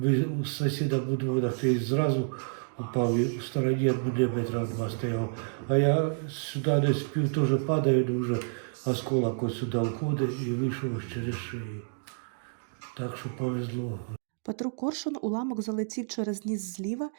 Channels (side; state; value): left; silent; digital silence